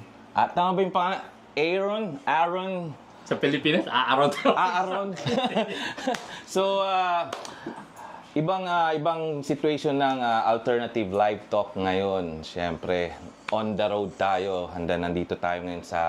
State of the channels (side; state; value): both; identical; correlation 1.00